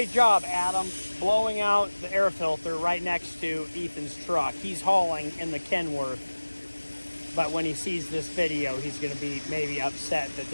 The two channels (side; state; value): both; inverted; correlation -1.00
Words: job, Adam, blowing out the air filter right next to Ethan's truck. He's hauling in the Kenworth, but when he sees this video, he's going to be maybe upset that